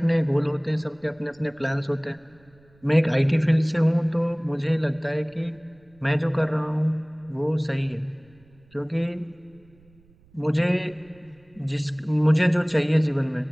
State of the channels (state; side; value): noise; right; rumble, 30 dB below the sound